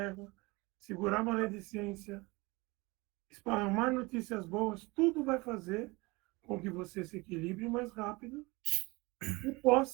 segurar a maledicência, esparramar notícias boas, tudo vai fazer com que você se equilibre mais rápido e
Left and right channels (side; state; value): left; quieter; 24.3 dB